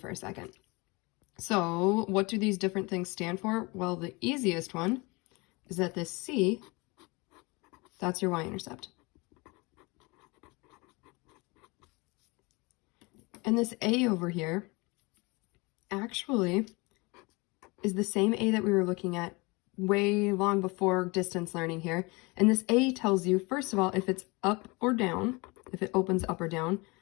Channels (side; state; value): right; quieter; 26.3 dB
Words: a second. So what do these different things stand for? Well, the easiest one is that this C, that's your y-intercept. And this A over here actually is the same A that we were looking at way long before distance learning here. And this A tells you, first of all, if it's up or down, if it opens up or down.